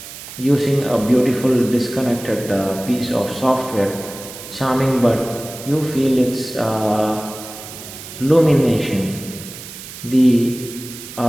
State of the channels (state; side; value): noise; right; hiss, 13 dB below the sound